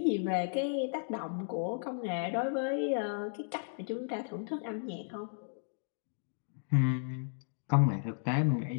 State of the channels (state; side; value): silent; right; digital silence